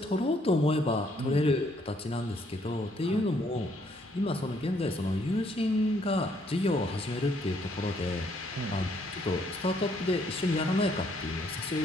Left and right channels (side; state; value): both; normal; correlation 0.68